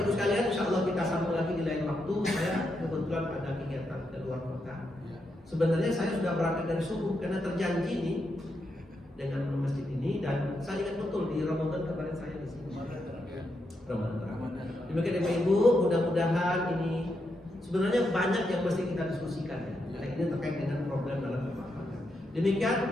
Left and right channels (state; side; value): normal; both; correlation 0.83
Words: Ibu sekalian, insya Allah kita sambung lagi di lain waktu. Saya kebetulan ada kegiatan ke luar kota. Sebenarnya saya sudah berangkat dari subuh karena terjanji nih dengan masjid ini, dan saya ingat betul di Ramadan kemarin saya di sini. Ramadan. Demikian Bapak Ibu, mudah-mudahan ini sebenarnya banyak yang mesti kita diskusikan ya. Nah, ini terkait dengan problem dalam rumah tangga. Demikian